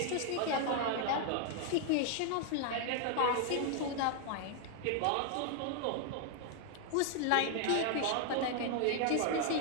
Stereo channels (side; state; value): both; different; correlation 0.00